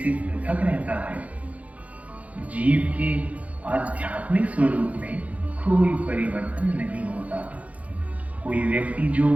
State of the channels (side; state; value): left; late; 0.067 ms